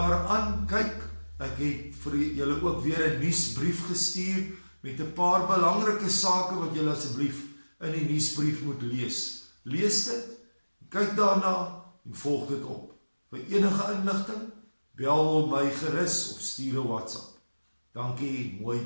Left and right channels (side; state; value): both; inverted; correlation -1.00